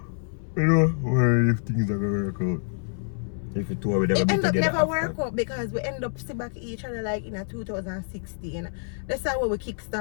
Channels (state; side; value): silent; right; 59 dB below the other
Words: You know, worried if things are going to work out. If the two of them It be end up together never after. work out because we end up see back each other like in a 2016. That's how we